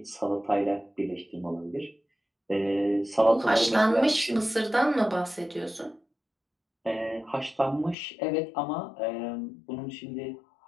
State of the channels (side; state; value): right; drops out; at 8.0 s